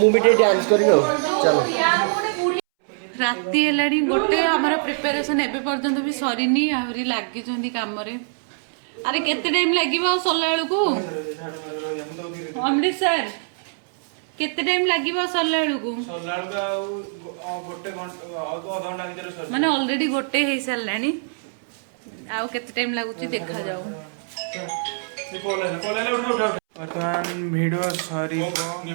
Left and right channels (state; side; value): silent; left; 63 dB below the other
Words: ବି ଟିକେ ଡ୍ୟାନ୍ସ କରିବି ଆଉ ଚାଲ ରାତି ହେଲାଣି ଗୋଟେ ଆମର ପ୍ରିପାରେସନ ଏବେ ପର୍ଯ୍ୟନ୍ତ ବି ସରିନି ଆହୁରି ଲାଗିଛନ୍ତି କାମରେ ଆରେ କେତେ ଟାଇମ ଲାଗିବ ଆଉ ସରିଲା ବେଳକୁ ଅମୃତ ସାର୍ କେତେ ଟାଇମ ଲାଗିବ ସରିଲା ବେଳକୁ ମାନେ ଅଲରେଡି ଗୋଟେ ହେଇସାରିଲାଣି ଆଉ କେତେ ଟାଇମ ଲାଗୁଛି ଦେଖାଯାଉ ବର୍ତ୍ତମାନ ଭିଡ଼ିଓ ସରିବ